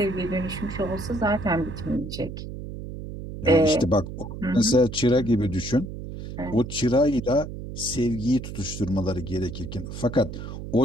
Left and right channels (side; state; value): right; noise; hum, 9 dB below the sound